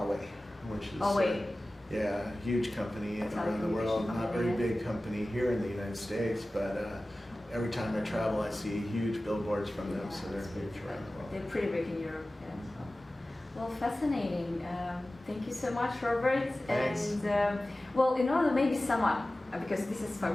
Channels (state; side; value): normal; both; correlation 0.97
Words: which is yeah, huge company around the world. Not very big company here in the United States, but every time I travel, I see huge billboards from them, so they're huge around the world. They're pretty big in Europe, yeah. Well, fascinating. Thank you so much, Robert. Thanks. And well, in order to maybe sum up, because this is